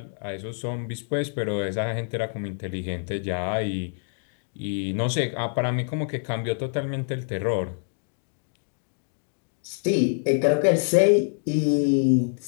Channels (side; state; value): right; silent; 61 dB below the other